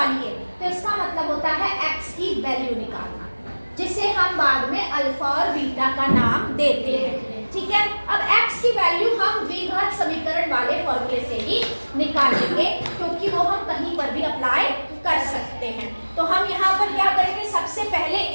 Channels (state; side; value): inverted; both; correlation -1.00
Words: तो इसका मतलब होता है x की वैल्यू निकालना, जिसे हम बाद में अल्फा और बीटा का नाम देते हैं। ठीक है, अब x की वैल्यू हम द्विघात समीकरण वाले फॉर्मूले से ही निकालेंगे, क्योंकि वो हम कहीं पर भी अप्लाई कर सकते हैं। तो हम यहाँ पर क्या करेंगे, सबसे पहले